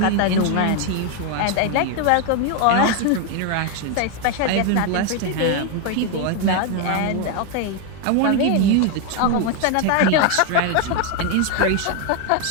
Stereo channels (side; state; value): both; different; correlation 0.01